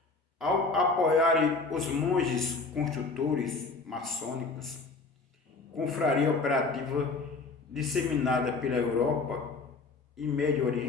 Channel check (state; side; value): quieter; right; 4.0 dB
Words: Ao apoiarem os monges construtores maçônicos, confraria operativa disseminada pela Europa e Médio